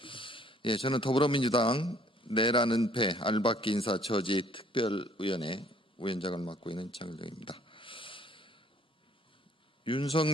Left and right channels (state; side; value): normal; both; correlation 0.59